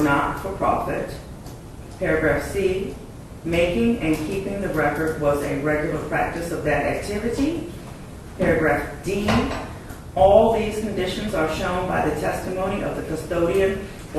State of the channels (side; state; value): both; identical; correlation 1.00